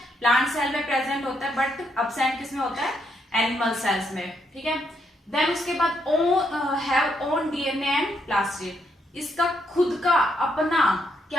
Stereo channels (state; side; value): normal; both; correlation 0.76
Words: प्लांट सेल में प्रेजेंट होता है बट एब्सेंट किसमें होता है? एनिमल सेल्स में, ठीक है. देन उसके बाद have own DNA and plastid. इसका खुद का अपना